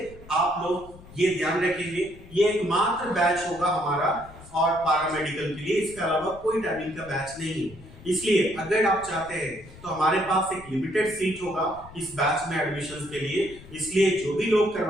आप लोग ये ध्यान रखेंगे, ये एकमात्र बैच होगा हमारा और पारामेडिकल के लिए, इसके अलावा कोई टाइमिंग का बैच नहीं है। इसलिए अगर आप चाहते हैं तो हमारे पास एक लिमिटेड सीट होगा इस बैच में एडमिशन के लिए, इसलिए जो भी लोग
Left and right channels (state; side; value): noise; left; rumble, 19 dB below the sound